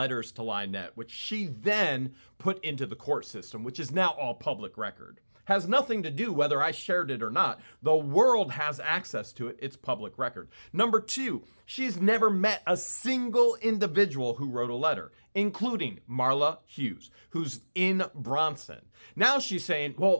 to LIEnette, which she then put into the court system, which is now all public record. Has nothing to do whether I shared it or not. The world has access to it. It's public record. Number two, she's never met a single individual who wrote a letter, including Marla Hughes, who's in Bronson. Now she's saying,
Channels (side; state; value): both; inverted; correlation -1.00